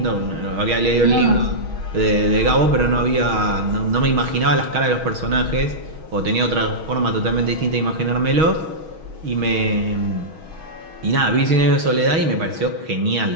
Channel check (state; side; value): late; left; 6.3 ms